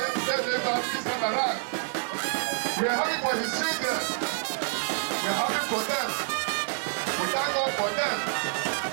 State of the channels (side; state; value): left; silent; digital silence